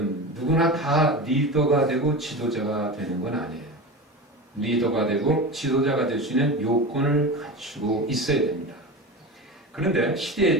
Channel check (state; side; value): normal; both; correlation 0.26